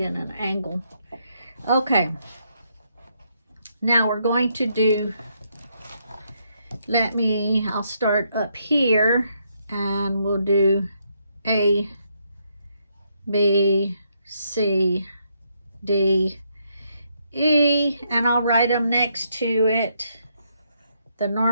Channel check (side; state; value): both; inverted; correlation -0.76